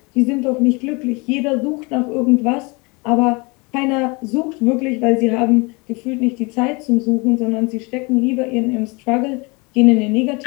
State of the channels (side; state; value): right; quieter; 28.0 dB